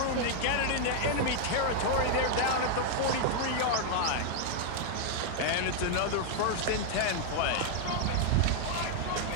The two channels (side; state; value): both; different; correlation 0.00